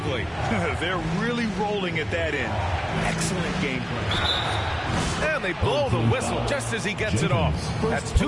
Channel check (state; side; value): identical; both; correlation 1.00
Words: They're really rolling at that end. Excellent game plan. And they blow the whistle just as he gets it off. That's